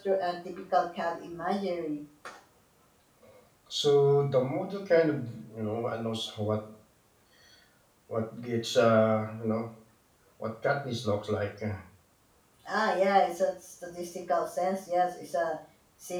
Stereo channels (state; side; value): identical; both; correlation 1.00